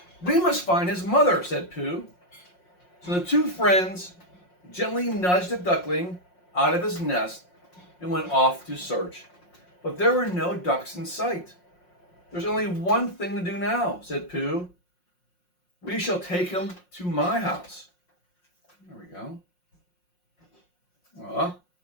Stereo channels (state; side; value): late; right; 5.6 ms